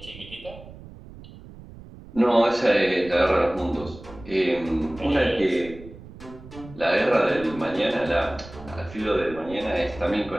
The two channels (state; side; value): noise; right; rumble, 17 dB below the sound